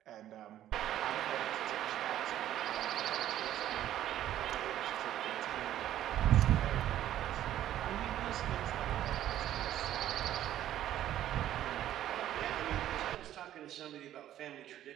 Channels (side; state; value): left; quieter; 12.2 dB